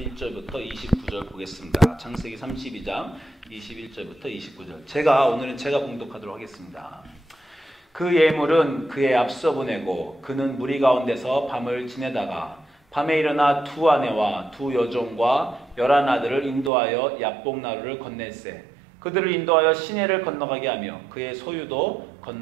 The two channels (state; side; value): drops out; left; at 16.7 s